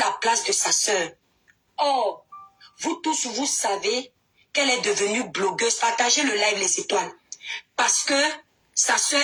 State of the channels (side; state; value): both; identical; correlation 1.00